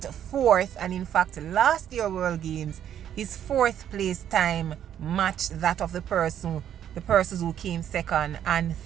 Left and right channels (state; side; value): quieter; left; 10.1 dB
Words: fourth. And in fact, last year World Games, his fourth place time matched that of the persons who came second and